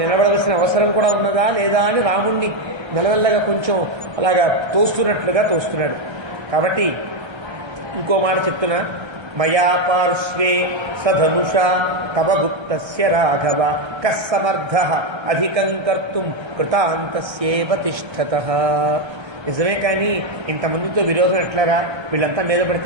అవసరం కూడా ఉన్నదా లేదా అని రాముణ్ణి మెల్లమెల్లగా కొంచెం అలాగా తోస్తున్నట్లుగా తోస్తున్నాడు. కాబట్టి ఇంకో మాట చెప్తున్నా, మయా పార్శ్వే సధనుషా తవ గుప్తస్య రాఘవ కస్సమర్థః అధికం కర్తుం కృతాంతస్యేవ తిష్ఠతః. నిజమే, కానీ ఇంతమందితో విరోధం ఎట్లారా, వీళ్ళంతా మీద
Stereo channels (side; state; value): left; late; 1.3 ms